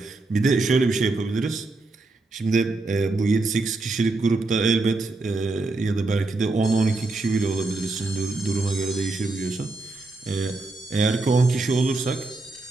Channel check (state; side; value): quieter; left; 3.3 dB